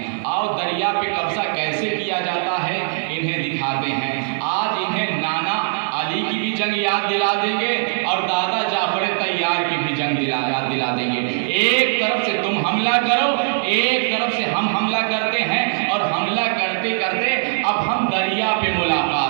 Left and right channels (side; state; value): left; silent; digital silence